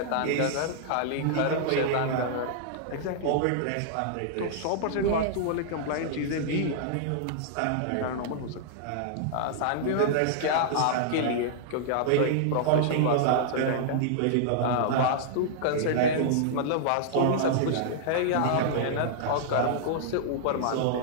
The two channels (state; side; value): different; both; correlation -0.01